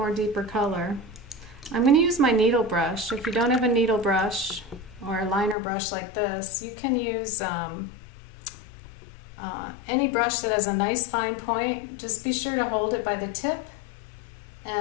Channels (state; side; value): drops out; right; at 5.6 s